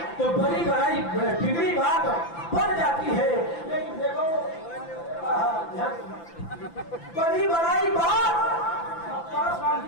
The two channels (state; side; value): late; right; 5.9 ms